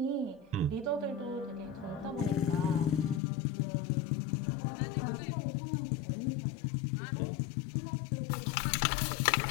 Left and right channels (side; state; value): right; drops out; at 3.2 s